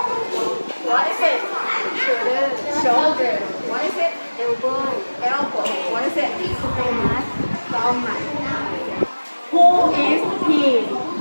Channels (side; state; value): both; inverted; correlation -1.00